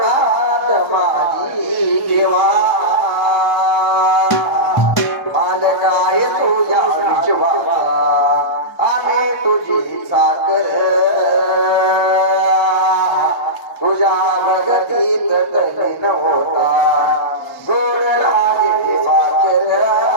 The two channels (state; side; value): normal; both; correlation -0.16